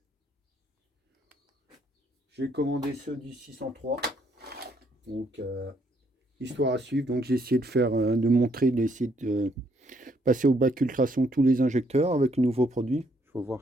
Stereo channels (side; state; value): both; normal; correlation 0.70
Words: J'ai commandé ceux du 603. Donc Histoire à suivre. Donc j'ai essayé de faire, de montrer, d'essayer de passer au bac ultrason tous les injecteurs avec le nouveau produit. Il faut